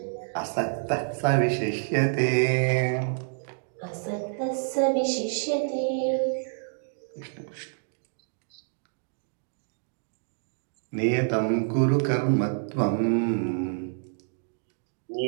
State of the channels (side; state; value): left; silent; digital silence